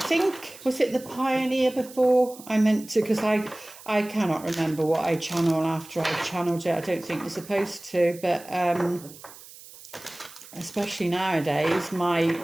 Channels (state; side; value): noise; right; hiss, 19 dB below the sound